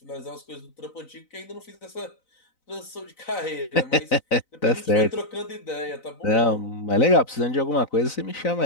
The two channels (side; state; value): right; late; 4.0 ms